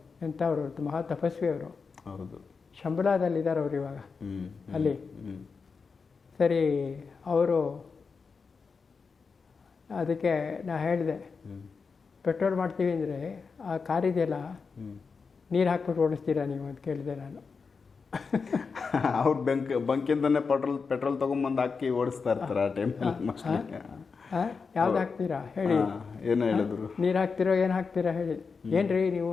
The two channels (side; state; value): right; quieter; 5.1 dB